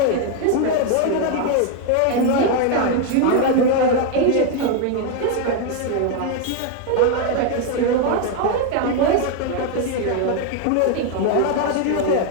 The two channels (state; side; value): different; both; correlation 0.01